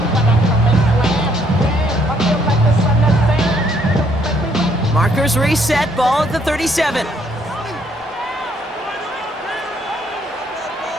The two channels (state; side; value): normal; both; correlation 0.68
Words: Markers reset, ball at the 37.